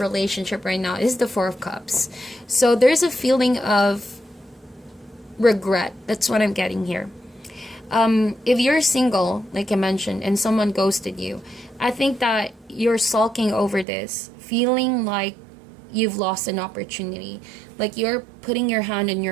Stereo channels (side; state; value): left; drops out; at 13.9 s